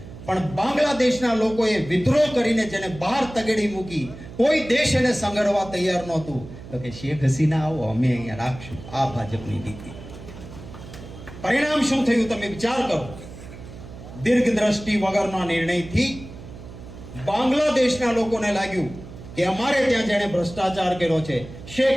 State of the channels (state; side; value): noise; right; hum, 15 dB below the sound